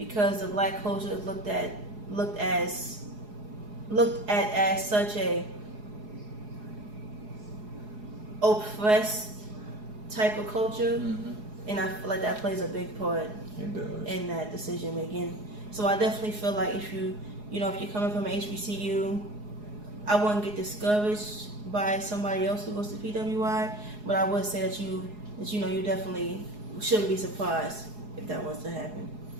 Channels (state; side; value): late; left; 4.8 ms